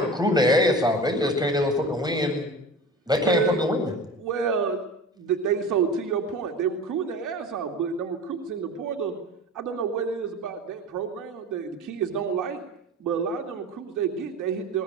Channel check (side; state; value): both; normal; correlation 0.34